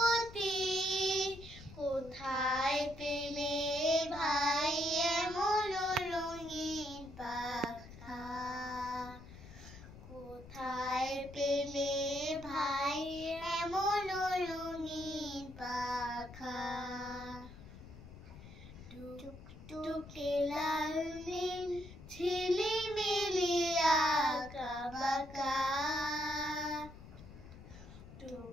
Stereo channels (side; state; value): left; noise; rumble, 16 dB below the sound